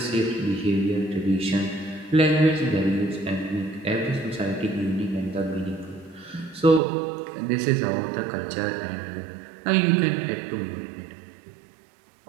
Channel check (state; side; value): drops out; left; at 6.8 s